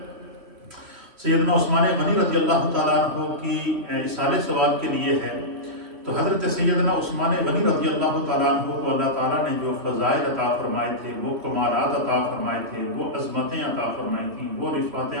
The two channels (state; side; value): late; left; 3.1 ms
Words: سیدنا عثمان غنی رضی اللہ تعالیٰ عنہ کی اصالِ ثواب کے لیے ہے، تو حضرت سیدنا عثمان غنی رضی اللہ تعالیٰ عنہ کو اللہ تعالیٰ نے جو فضائل عطا فرمائے تھے، وہ کمالات عطا فرمائے تھے، وہ عظمتیں عطا فرمائی تھیں، وہ رفعتیں